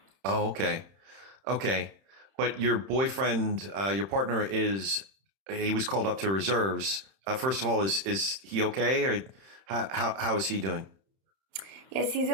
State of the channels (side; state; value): left; late; 31 ms